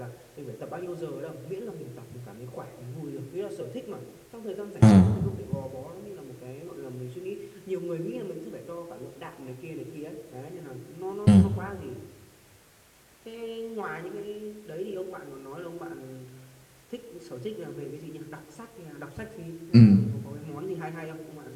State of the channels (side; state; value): both; identical; correlation 1.00